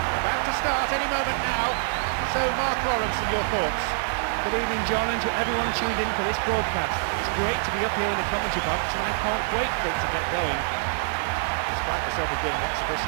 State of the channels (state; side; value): silent; left; 61 dB below the other